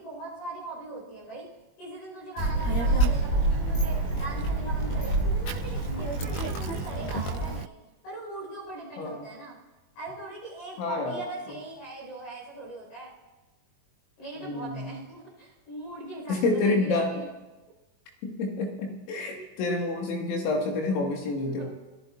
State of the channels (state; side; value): late; right; 21 ms